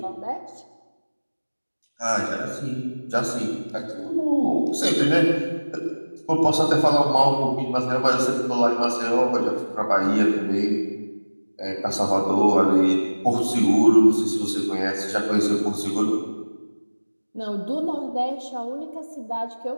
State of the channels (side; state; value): both; inverted; correlation -1.00